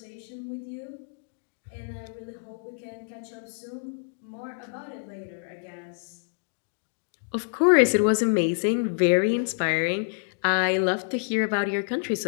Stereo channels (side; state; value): right; silent; digital silence